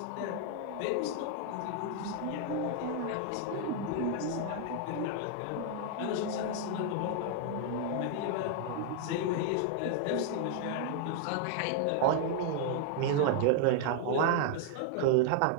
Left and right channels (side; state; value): both; different; correlation 0.00